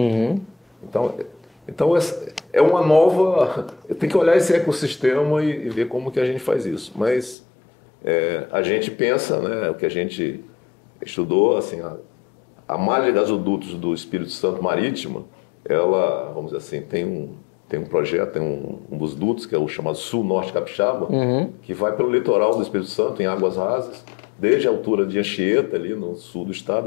Então é uma nova... Tem que olhar esse ecossistema e ver como que a gente faz isso. Mas a gente pensa, né, o que a gente estudou, assim, a malha de gasodutos do Espírito Santo Marítima, ela, vamos dizer assim, tem um projeto, tem um dos dutos, que é o chamado Sul-Norte Capixaba, que vai pelo litoral do Espírito Santo, em águas rasas, desde a altura de Anchieta, ali no sul do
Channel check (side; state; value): right; drops out; at 7.4 s